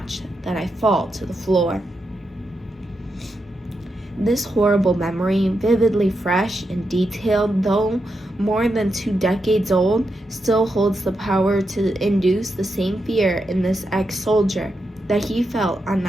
that I fall to the floor. This horrible memory, vividly fresh and detailed, though more than 2 decades old, still holds the power to induce the same fear in this ex-soldier that he felt on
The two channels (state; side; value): normal; both; correlation 0.85